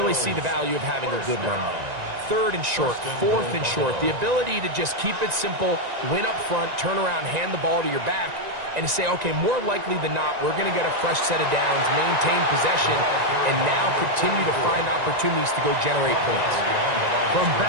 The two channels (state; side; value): late; left; 1.9 ms